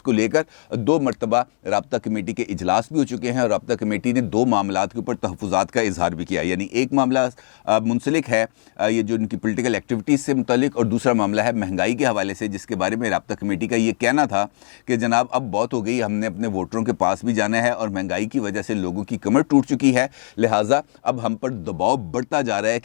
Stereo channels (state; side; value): silent; right; digital silence